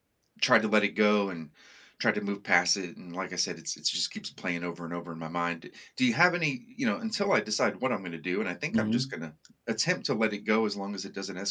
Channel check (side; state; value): both; identical; correlation 1.00